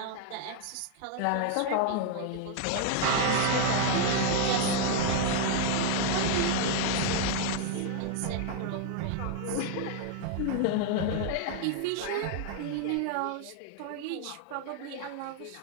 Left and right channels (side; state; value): both; different; correlation 0.00